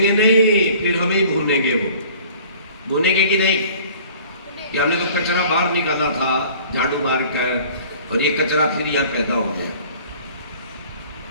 नहीं, फिर हमें ही भूनेंगे। वो भूनेंगे कि नहीं कि हमने तो कचरा बाहर निकाला था झाड़ू मार कर, और ये कचरा फिर यहां पैदा हो गया।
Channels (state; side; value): inverted; both; correlation -0.49